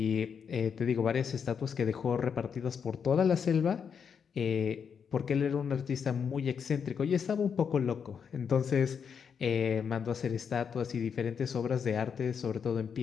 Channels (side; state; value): right; quieter; 6.9 dB